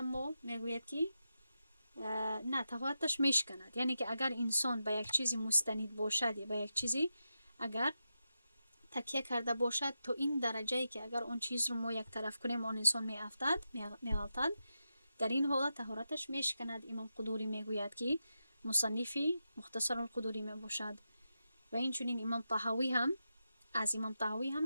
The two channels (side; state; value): both; inverted; correlation -0.88